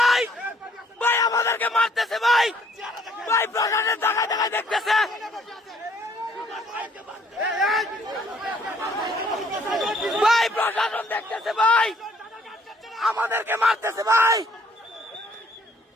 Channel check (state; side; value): normal; both; correlation 0.63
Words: ভাই আমাদেরকে মারতেছে ভাই, ভাই প্রশাসন দেখায় দেখায় দেখতেছে ভাই, প্রশাসন দেখতেছে ভাই, আমাদেরকে মারতেছে ভাই।